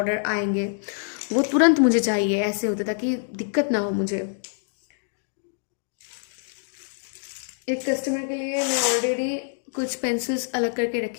आएंगे, वो तुरंत मुझे चाहिए ऐसे होता, ताकि दिक्कत ना हो मुझे। एक कस्टमर के लिए मैं ऑलरेडी कुछ पेंसिल्स अलग करके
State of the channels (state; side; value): silent; right; digital silence